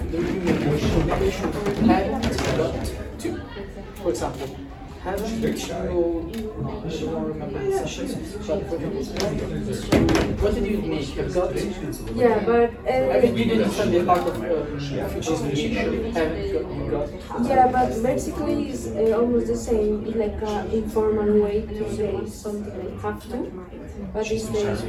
the obligation have got to. For example, haven't you, I don't remember the sessions, but for example, what did you make? Have got to? Yeah, but I mean, you didn't understand the part of future obligation, haven't got. yeah, but basically it's almost the same. It's like an informal way to say something like have to, but it's the have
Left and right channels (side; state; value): both; identical; correlation 1.00